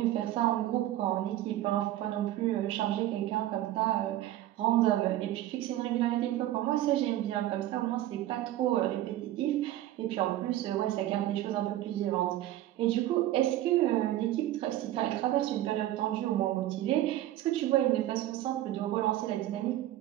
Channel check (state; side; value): quieter; left; 14.0 dB